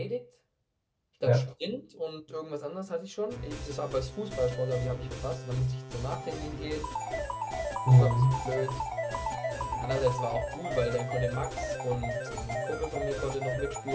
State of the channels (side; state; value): both; identical; correlation 1.00